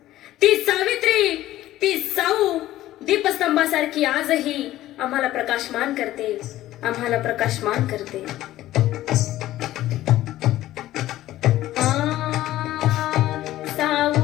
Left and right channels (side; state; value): right; quieter; 14.8 dB